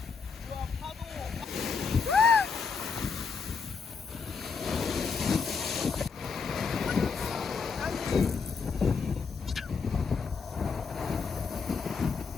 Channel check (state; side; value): quieter; right; 5.2 dB